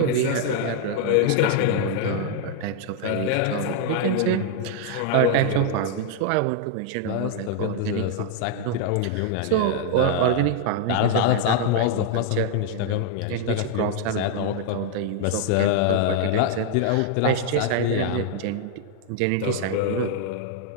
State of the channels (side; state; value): both; different; correlation 0.00